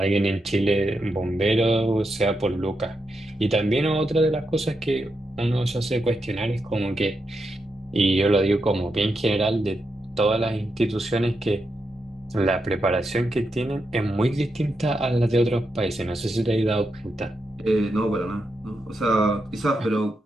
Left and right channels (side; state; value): both; normal; correlation 0.85